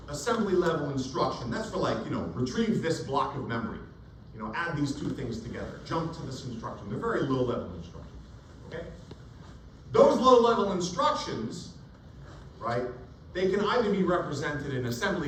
assembly level instruction, that's for like, retrieve this block of memory. Add these two things together. Jump to this instruction. They're very low level instructions. Okay? Those low level instructions, right, they can either be represented in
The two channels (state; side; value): identical; both; correlation 1.00